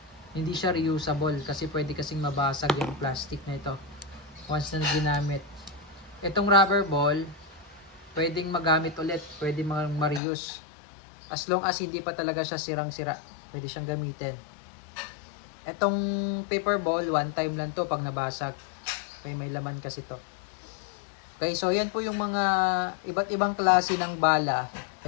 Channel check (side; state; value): right; drops out; at 10.2 s